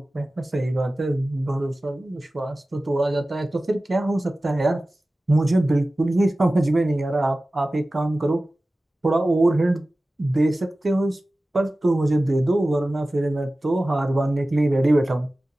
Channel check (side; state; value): both; normal; correlation 0.96